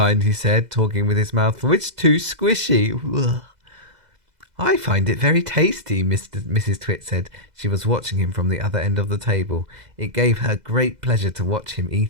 he said, talking with his mouth full. It's too squishy. Ugh. I find it very tasty, Mrs. Twit said. She was watching him from the other end of the table. It gave her great pleasure to watch him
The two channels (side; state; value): left; late; 2.0 ms